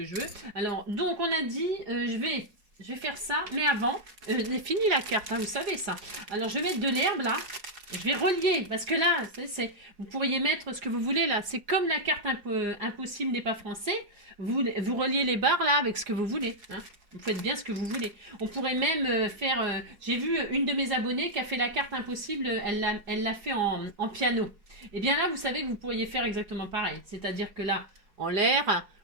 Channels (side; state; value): left; late; 4.7 ms